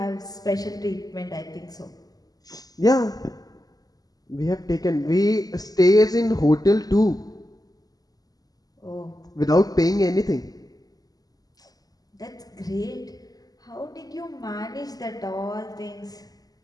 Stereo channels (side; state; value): right; late; 0.18 ms